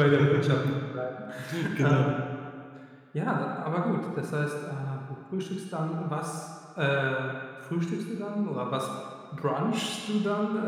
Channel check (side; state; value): both; identical; correlation 1.00